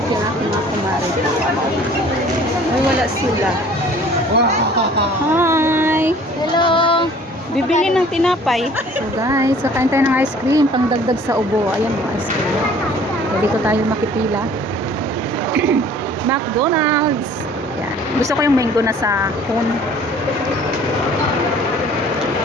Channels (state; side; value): normal; both; correlation 0.51